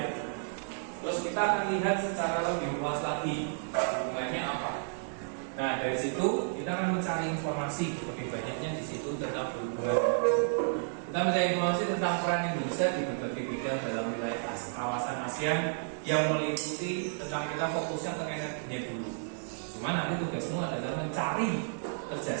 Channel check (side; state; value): left; silent; digital silence